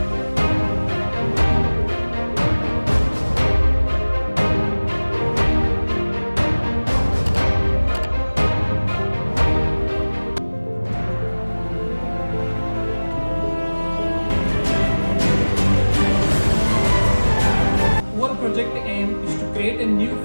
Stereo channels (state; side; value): inverted; both; correlation -1.00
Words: Our project aim is to create a new